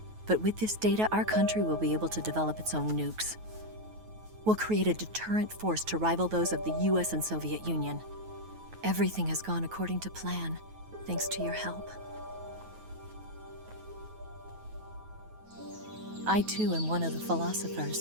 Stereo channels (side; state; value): left; late; 9.3 ms